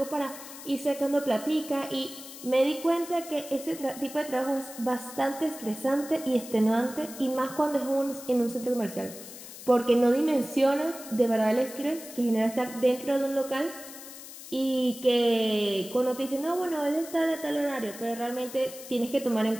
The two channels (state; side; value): noise; left; hiss, 14 dB below the sound